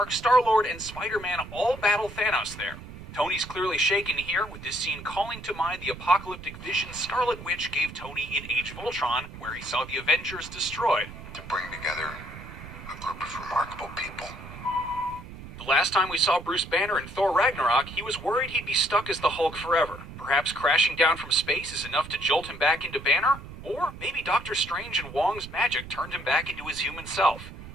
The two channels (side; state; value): right; noise; rumble, 14 dB below the sound